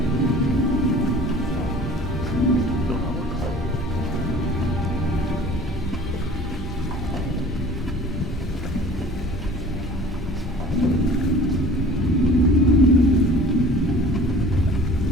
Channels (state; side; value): normal; both; correlation 0.47